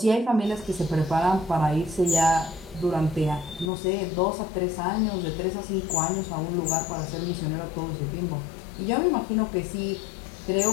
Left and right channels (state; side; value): drops out; right; at 3.7 s